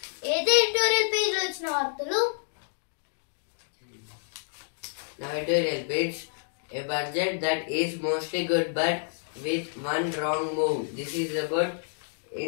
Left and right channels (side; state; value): right; silent; digital silence